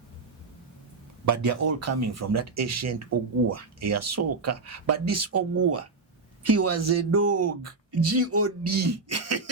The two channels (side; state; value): left; quieter; 4.0 dB